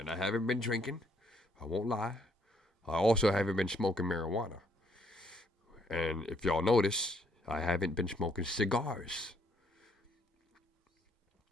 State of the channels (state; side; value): normal; both; correlation 0.69